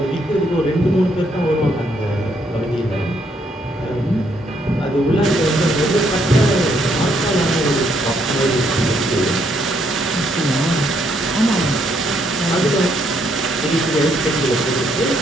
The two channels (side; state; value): both; normal; correlation 0.72